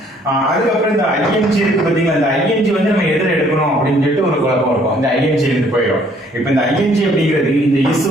அதுக்கப்புறம் இந்த ing இருக்கு பாத்தீங்களா இந்த ing வந்து நம்ம எதிர எடுக்கணும் அப்படின்னு சொல்லிட்டு ஒரு குழப்பம் இருக்கும் இந்த ing இருந்து போயிடும் இப்போ இந்த ing அப்படிங்கிறது இந்த is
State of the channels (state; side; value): normal; both; correlation 0.62